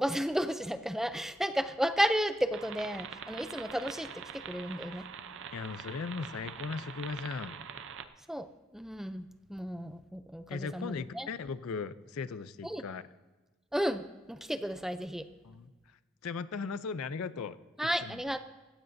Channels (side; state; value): both; normal; correlation 0.80